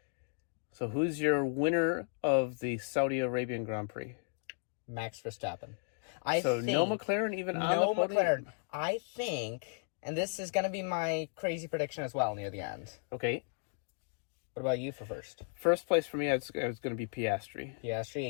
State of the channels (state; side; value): silent; right; 55 dB below the other